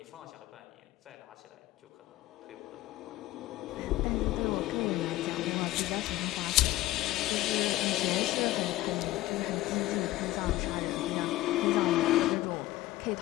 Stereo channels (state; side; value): quieter; right; 16.6 dB